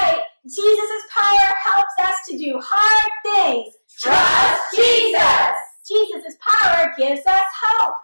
Jesus' power helps us to do hard things. Trust Jesus. Jesus' power gives us hope.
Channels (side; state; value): both; inverted; correlation -1.00